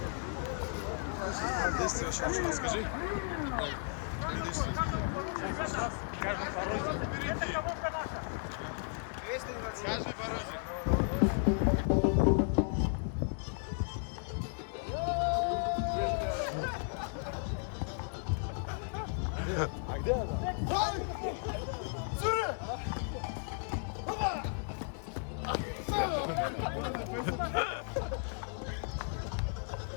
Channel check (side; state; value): right; silent; 55 dB below the other